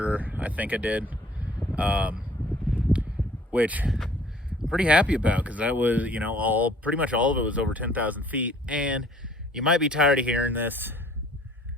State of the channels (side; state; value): both; normal; correlation 0.56